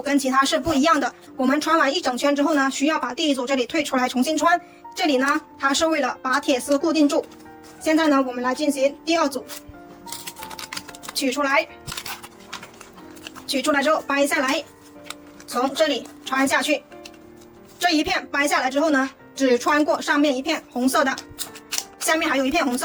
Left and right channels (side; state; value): both; identical; correlation 1.00